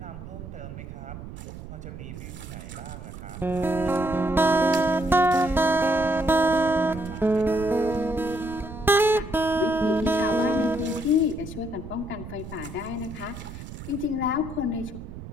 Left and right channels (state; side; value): noise; right; rumble, 12 dB below the sound